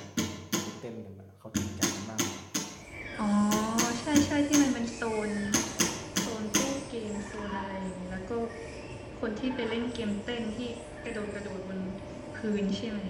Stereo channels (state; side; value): identical; both; correlation 1.00